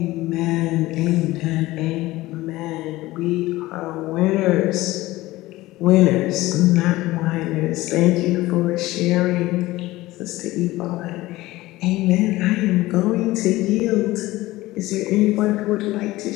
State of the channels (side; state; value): right; quieter; 18.2 dB